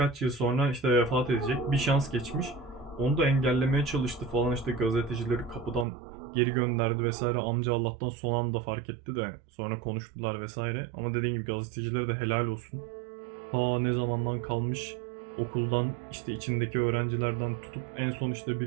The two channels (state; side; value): drops out; left; at 5.9 s